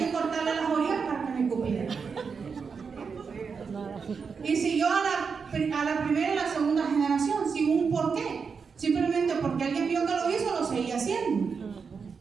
cortarle las orillas para que me cupiera. Y siguió a la primera y la segunda generación, sin un porqué. Simplemente porque alguien vio que lo hizo, lo seguía haciendo.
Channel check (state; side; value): quieter; left; 5.6 dB